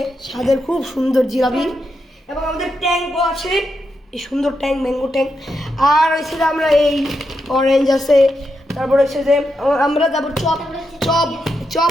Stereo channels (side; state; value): both; normal; correlation 0.84